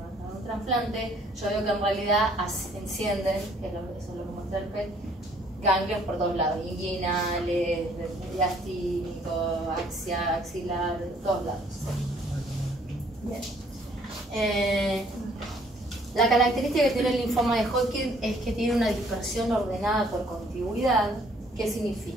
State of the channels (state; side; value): normal; both; correlation 0.62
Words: un trasplante, yo veo que en realidad encienden, que eso es lo que muestra el PET, ganglios por todos lados, inguinales, diastínico, axilar, de todos lados. Bien. La característica que tiene el linfoma de Hodgkin es que tiene una dispersión ordenada por contigüidad. ¿Qué